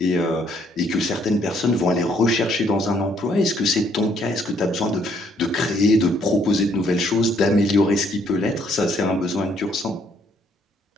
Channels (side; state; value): both; normal; correlation 0.67